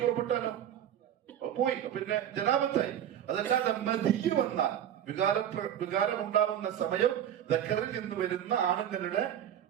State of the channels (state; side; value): quieter; left; 10.2 dB